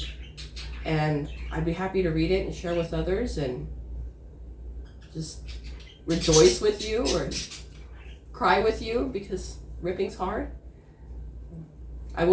and I'd be happy to read it and share with others and just rejoice with you or cry with you, because ripping's hard. I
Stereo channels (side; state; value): both; identical; correlation 1.00